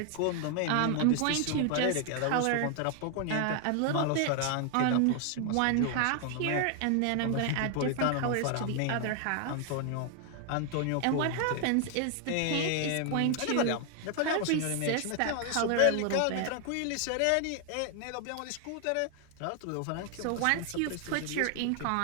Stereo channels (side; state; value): both; different; correlation 0.00